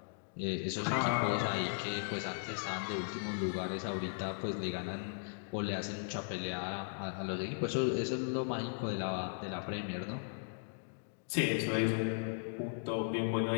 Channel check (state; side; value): silent; right; digital silence